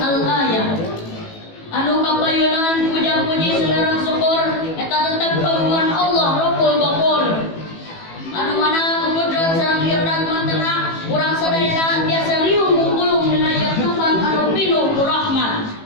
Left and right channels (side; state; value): right; late; 18 ms